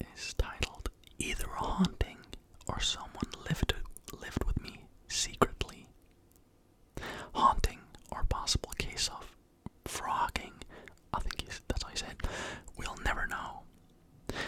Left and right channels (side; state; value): both; identical; correlation 1.00